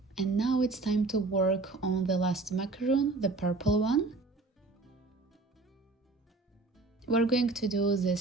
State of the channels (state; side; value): quieter; left; 3.6 dB